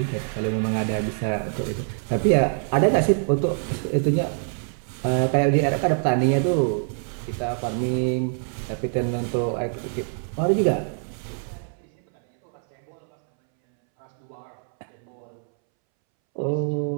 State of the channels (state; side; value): silent; left; 62 dB below the other